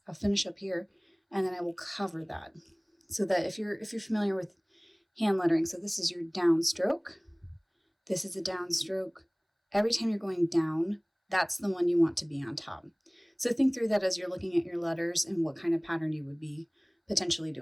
finish up here, and then I will cover that. So that if you're familiar with hand lettering, so this is your downstroke, this is a downstroke. Every time you're going down, that's the one you want to be on top. So think through that as you're looking at your letters and what kind of pattern you would be potentially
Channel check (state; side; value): identical; both; correlation 1.00